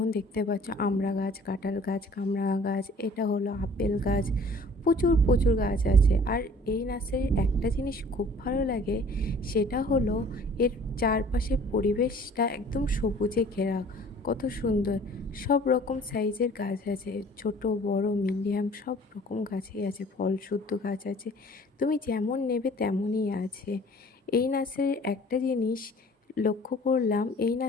দেখতে পাচ্ছ আমড়া গাছ, কাঁঠাল গাছ, কামরাঙা গাছ, এটা হলো আপেল গাছ। প্রচুর প্রচুর গাছ আছে। আর এই নার্সারির একটা জিনিস খুব ভালো লাগে, সেটা হলো এর চারপাশের পরিবেশটা একদম সবুজে ঘেরা। কত সুন্দর! সব রকম সাইজের গাছ আছে, ছোট বড় মিডিয়াম সব রকম গাছই আছে, ফলশুদ্ধ গাছ আছে। তুমি যেমন নেবে তেমনই আছে। এই নার্সারির একটা জিনিস লক্ষ্য করলাম, এই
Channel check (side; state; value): both; normal; correlation 0.51